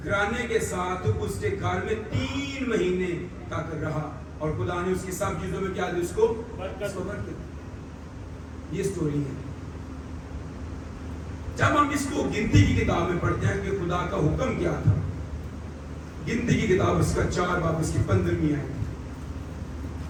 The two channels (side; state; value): both; identical; correlation 1.00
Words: گھرانے کے ساتھ اس کے گھر میں 3 مہینے تک رہا اور خدا نے اس کی سب چیزوں میں کیا دی؟ اس کو برکت. یہ سٹوری ہے. جب ہم اس کو گنتی کی کتاب میں پڑھتے ہیں کہ خدا کا حکم کیا تھا، گنتی کی کتاب اس کا 4 باب اس کی 15ویں آیت،